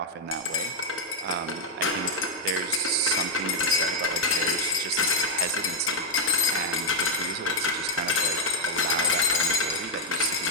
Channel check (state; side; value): normal; both; correlation -0.01